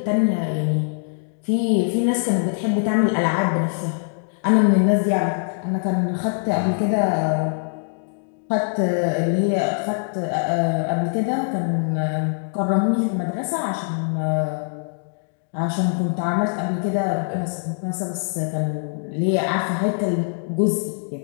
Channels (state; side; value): silent; right; digital silence